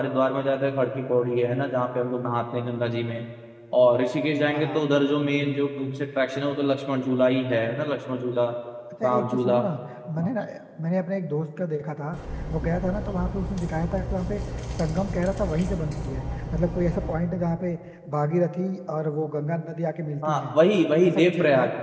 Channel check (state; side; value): identical; both; correlation 1.00